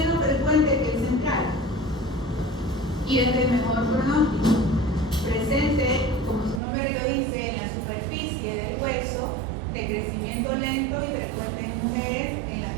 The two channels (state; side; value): drops out; left; at 6.6 s